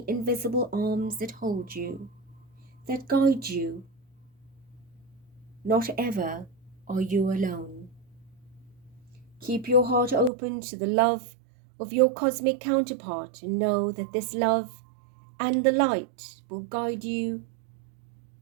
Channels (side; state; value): left; drops out; at 10.3 s